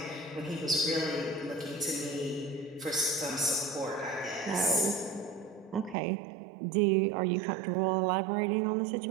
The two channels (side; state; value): left; drops out; at 6.0 s